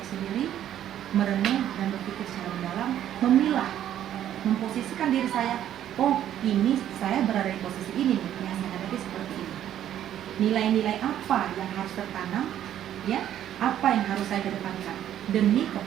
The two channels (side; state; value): left; quieter; 11.1 dB